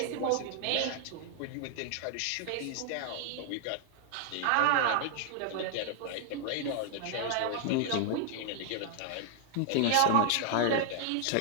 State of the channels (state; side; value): different; both; correlation 0.00